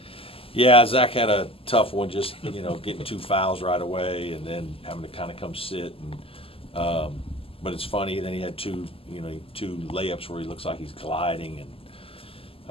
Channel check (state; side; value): late; right; 0.27 ms